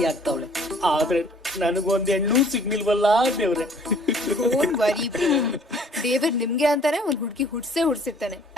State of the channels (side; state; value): both; normal; correlation 0.55